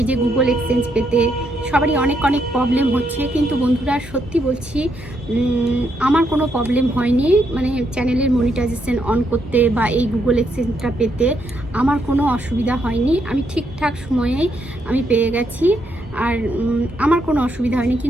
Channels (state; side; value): normal; both; correlation 0.77